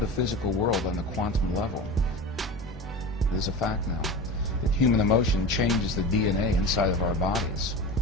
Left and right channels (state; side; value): normal; both; correlation 0.30